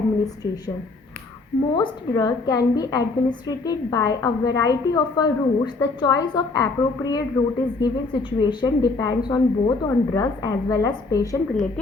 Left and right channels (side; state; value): right; quieter; 3.6 dB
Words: Most drug can be administered by a variety of routes. The choice of appropriate route is given situation depends on both on drugs as well as patient